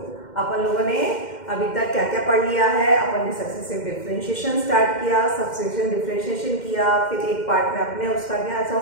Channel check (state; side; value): late; right; 2.1 ms